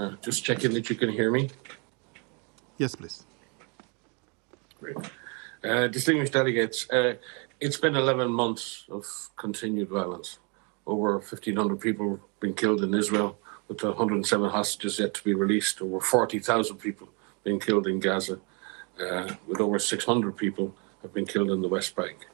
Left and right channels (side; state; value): left; quieter; 33.8 dB